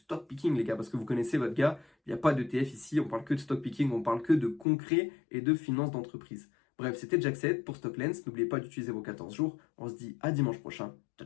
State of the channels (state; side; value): drops out; right; at 4.7 s